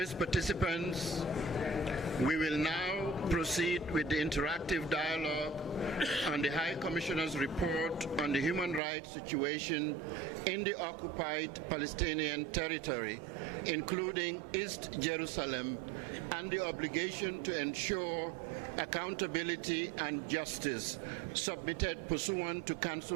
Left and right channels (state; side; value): drops out; left; at 8.8 s